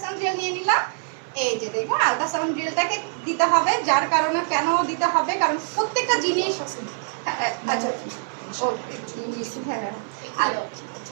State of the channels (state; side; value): silent; left; 62 dB below the other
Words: জেল নিয়ে নিলাম। এই যে দেখুন, আল্ট্রাসাউন্ড জেলটাকে দিতে হবে। যার কারণে কেন দিতে হবে, কারণ প্রত্যেকটা জিনিস আচ্ছা ও হ্যাঁ,